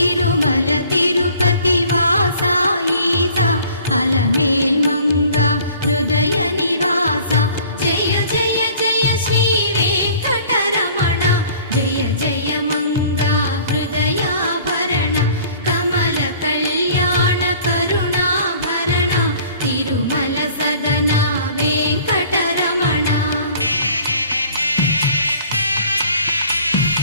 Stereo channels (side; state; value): both; inverted; correlation -0.51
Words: తిరుపతి వాస ఈస అలమేల్ మంగ హృదయ నివాస జయ జయ జయ శ్రీ వెంకటరమణ జయ జయ మంగ హృదయాభరణ కమల కళ్యాణ కరుణాభరణ తిరుమల సదన వెంకటరమణ.